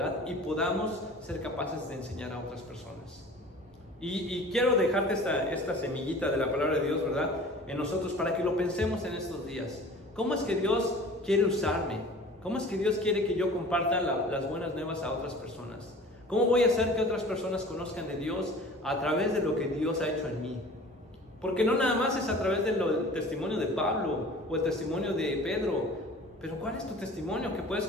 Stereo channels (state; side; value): normal; both; correlation 0.43